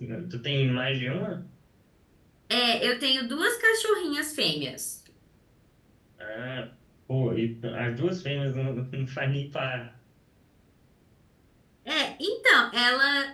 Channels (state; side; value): identical; both; correlation 1.00